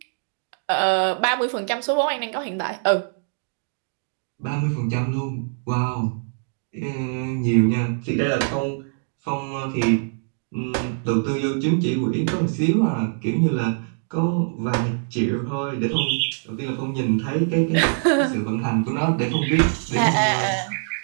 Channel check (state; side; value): silent; left; digital silence